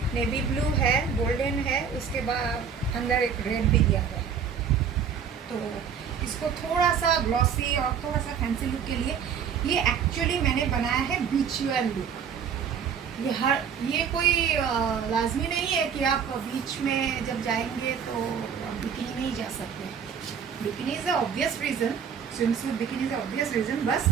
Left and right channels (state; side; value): quieter; left; 7.1 dB